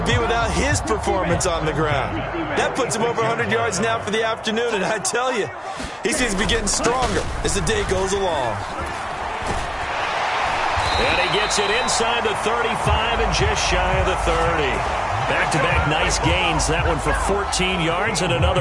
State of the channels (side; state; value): both; identical; correlation 1.00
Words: be without his performance on the ground? That puts him over 100 yards now for the afternoon, and I tell you, he seems to be getting stronger as the day goes along. And he gets it inside the 35 and just shy of the 30. Back-to-back nice gains. That one for 14 yards and